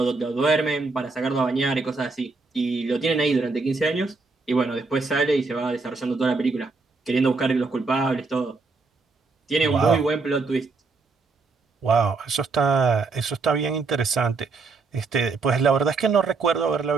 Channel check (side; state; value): left; quieter; 4.0 dB